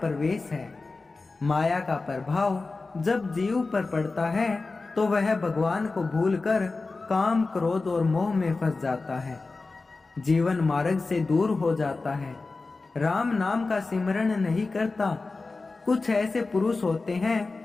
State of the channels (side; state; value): right; quieter; 3.7 dB